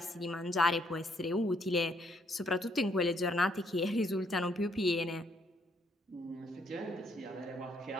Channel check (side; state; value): both; normal; correlation 0.70